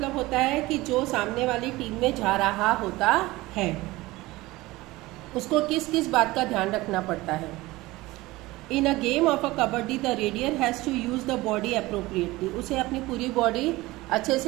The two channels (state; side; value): quieter; left; 19.7 dB